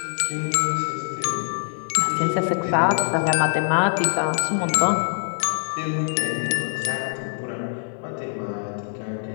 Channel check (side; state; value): right; silent; digital silence